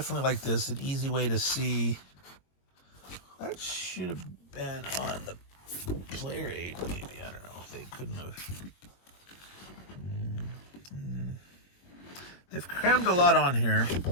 like this. An easy way to see. That should have been on the player aid, maybe. I don't know if they couldn't have. They've crammed a lot on here.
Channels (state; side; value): late; right; 21 ms